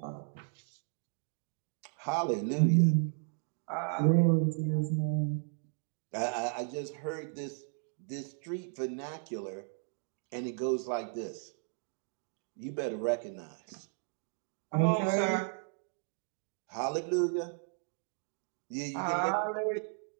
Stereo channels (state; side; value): silent; left; 55 dB below the other